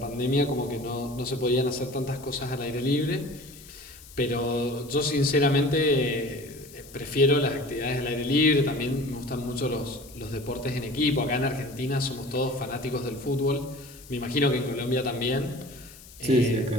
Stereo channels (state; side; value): noise; left; hiss, 20 dB below the sound